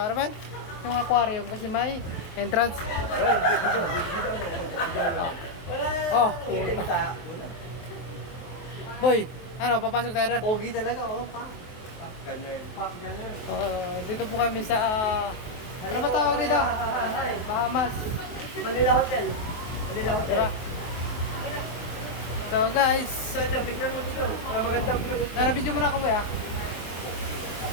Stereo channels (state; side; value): late; right; 23 ms